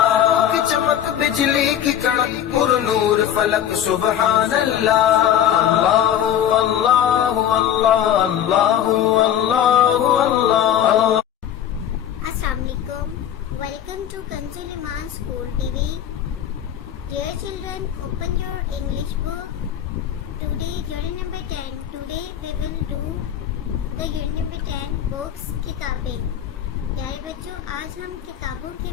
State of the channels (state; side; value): quieter; right; 10.3 dB